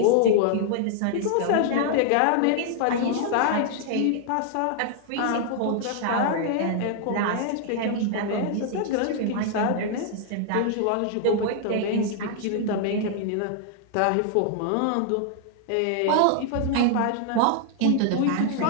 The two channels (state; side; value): different; both; correlation 0.00